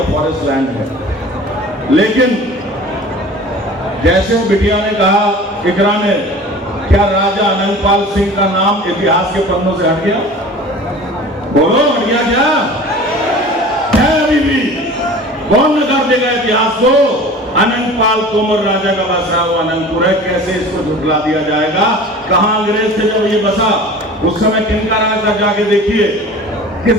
फॉरेस्ट लैंड है। लेकिन जैसे बिटिया ने कहा, इकरा ने, क्या राजा अनंगपाल सिंह का नाम इतिहास के पन्नों से हट गया? बोलो, हट गया क्या? है अभी भी? कौन नकार देगा इतिहास को? अनंगपाल तोमर राजा का बसा हुआ अनंतपुर है, कैसे इसको झुठला दिया जाएगा? कहां अंग्रेज थे जब ये बसा? उस समय किनका राज था? जाके देखिए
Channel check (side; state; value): both; normal; correlation 0.41